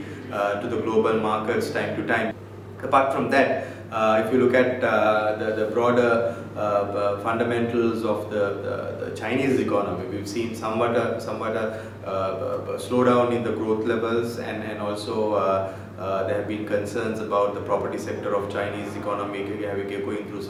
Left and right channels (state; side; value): identical; both; correlation 1.00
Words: to the global markets time to time. Apart from that, if you look at the broader fundamentals of the Chinese economy, we've seen somewhat a slowdown in the growth levels, and also there have been concerns about the property sector of Chinese economy going through